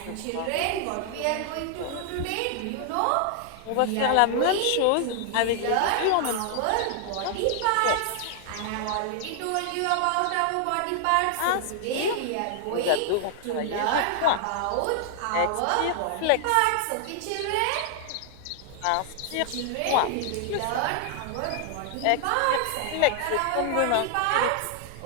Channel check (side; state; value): both; different; correlation 0.00